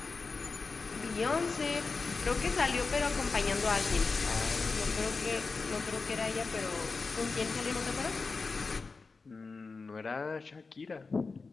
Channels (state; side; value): quieter; right; 4.2 dB